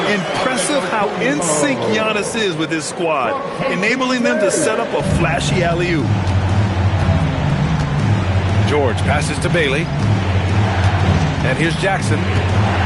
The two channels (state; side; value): identical; both; correlation 1.00